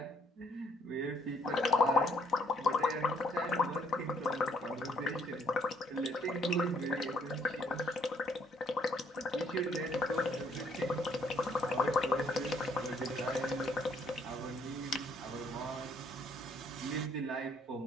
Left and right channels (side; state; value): both; normal; correlation 0.66